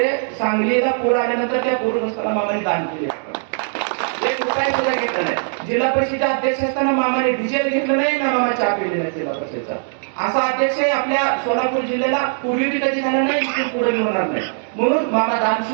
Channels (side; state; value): left; silent; 62 dB below the other